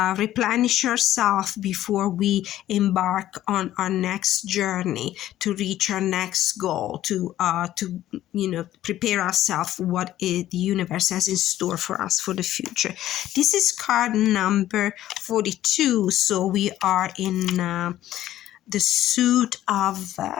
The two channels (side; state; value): right; quieter; 13.3 dB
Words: replenish yourself before we embark on our next journey, to reach our next goal, to prepare ourselves for what the universe has in store for us for the future. This is card number 42, so we are in the suit of